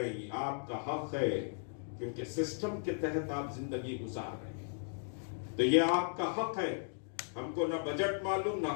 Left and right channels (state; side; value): silent; right; digital silence